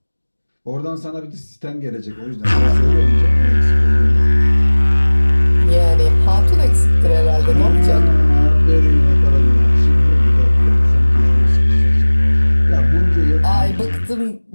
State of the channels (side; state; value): both; inverted; correlation -1.00